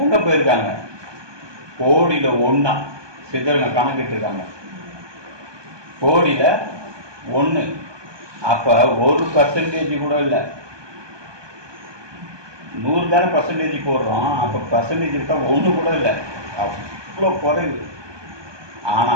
எங்க போயிருக்காங்க? கோடியில 1 சித்தருங்க கணக்கிட்டு இருக்காங்க. கோடியில 1. அப்ப 1% கூட இல்லை. 100 தானே பர்சன்டேஜ் போடுறோம். அப்ப பர்சன்டேஜ் இருக்கா 1 கூட இல்லை, அவ்வளோ குறைவு. ஆனா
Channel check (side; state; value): left; late; 1.2 ms